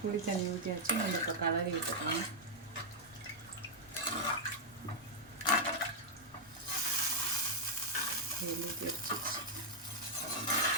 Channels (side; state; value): both; normal; correlation -0.04